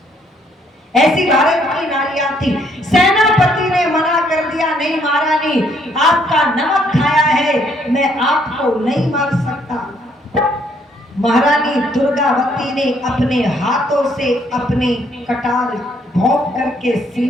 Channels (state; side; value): normal; both; correlation 0.68